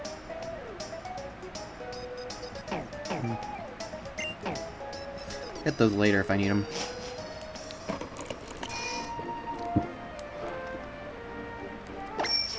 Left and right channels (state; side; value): identical; both; correlation 1.00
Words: Get those later if I need them.